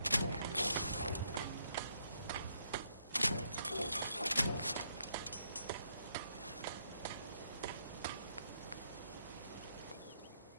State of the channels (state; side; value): inverted; both; correlation -0.74